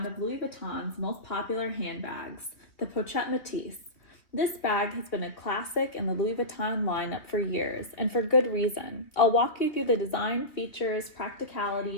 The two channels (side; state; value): right; late; 2.9 ms